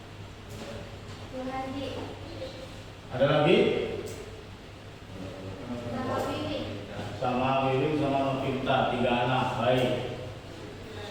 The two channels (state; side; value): identical; both; correlation 1.00